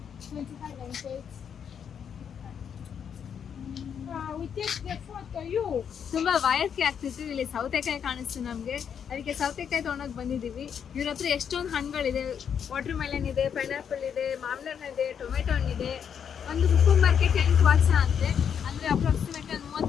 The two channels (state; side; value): quieter; right; 7.8 dB